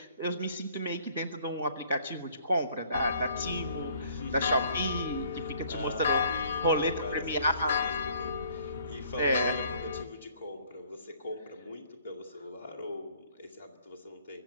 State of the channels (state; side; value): inverted; both; correlation -0.58